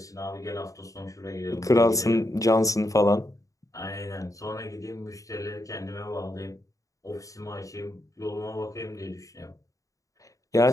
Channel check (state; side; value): late; right; 0.16 ms